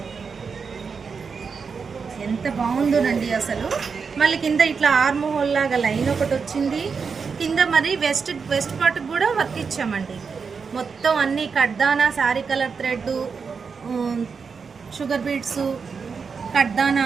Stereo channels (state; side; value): quieter; left; 5.5 dB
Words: ఎంత బాగుందోనండి అసలు. మళ్ళీ కింద ఇట్లా ఆర్మ్ హోల్ లాగా లైన్ ఒకటి వచ్చింది. కింద మరి వెస్ట్ పార్ట్కి కూడా వర్క్ ఇచ్చామండి. మొత్తం అన్నీ కడ్దానా, sari colour thread, sugar beads, కడ్దానా